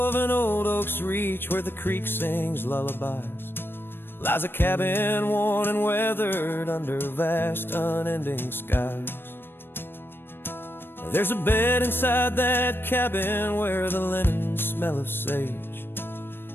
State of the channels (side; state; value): right; late; 0.10 ms